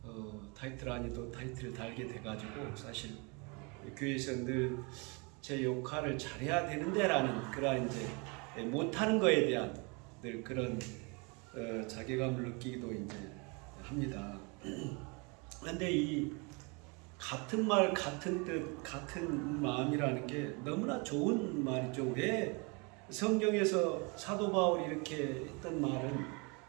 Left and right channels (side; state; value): left; quieter; 30.9 dB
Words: 타이틀 아니 또 타이틀을 달게 돼가지고 사실 교회에서 늘 제 역할을 잘해야 되는데라는 그런 이제 못하는 거에 대한 늘 그런 자괴감을 느끼기도 이제 합니다. 그런데 이 같은 말, 같은 뜻, 같은 마음이라는 게 너무나 좋은 말이죠. 왜 성경에서 사도 바울이 이렇게 했던 말은